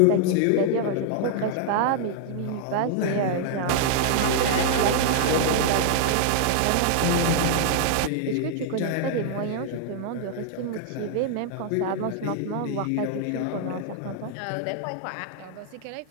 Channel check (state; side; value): different; both; correlation -0.01